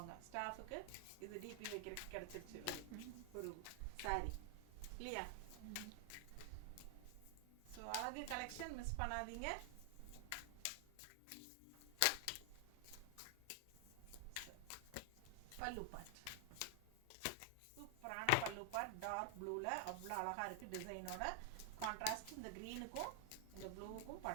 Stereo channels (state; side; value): different; both; correlation 0.00